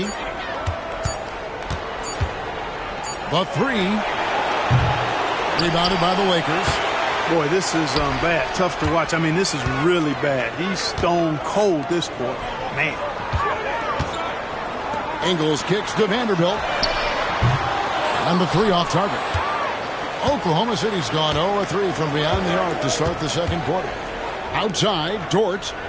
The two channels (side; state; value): both; identical; correlation 1.00